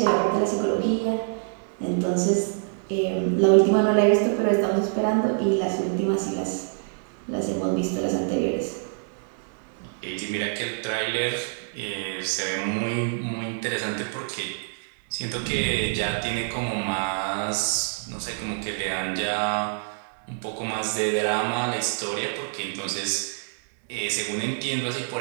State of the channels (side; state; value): left; silent; digital silence